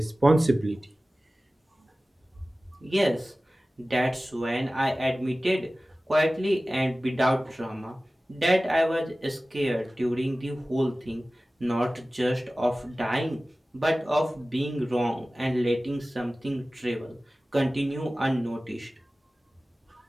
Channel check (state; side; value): normal; both; correlation 0.97